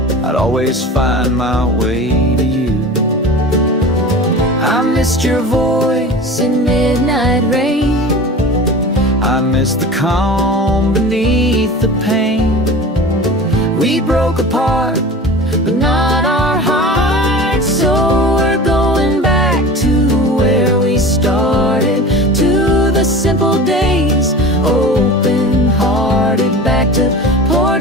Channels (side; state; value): both; normal; correlation 0.35